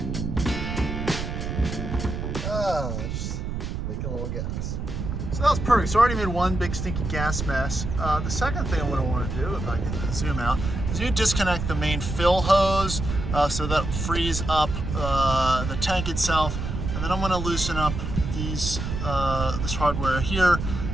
Just making a little gas. So that was perfect. So I already made one big stinky gas mess. The second thing I want to do, if I can zoom out, is you disconnect the main fill hose so that frees up the tank itself. And then I'm going to loosen up these this hardware here,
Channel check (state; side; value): noise; right; rumble, 4 dB below the sound